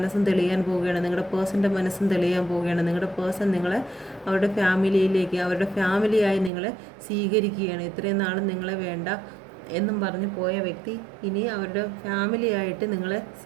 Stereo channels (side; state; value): left; drops out; at 6.5 s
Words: തെളിയാൻ പോവുകയാണ്. നിങ്ങളുടെ പേഴ്സൻ്റെ മനസ്സും തെളിയാൻ പോവുകയാണ്. നിങ്ങളുടെ പേഴ്സൺ നിങ്ങളെ അവരുടെ ഫാമിലിയിലേക്ക്, അവരുടെ ഫാമിലിയായി നിങ്ങളെ സ്വീകരിക്കുകയാണ്. ഇത്രയും നാളും നിങ്ങളെ വേണ്ട എന്നും പറഞ്ഞ് പോയ വ്യക്തി ഇനി അവരുടെ ഫാമിലിയായിട്ട് നിങ്ങളെ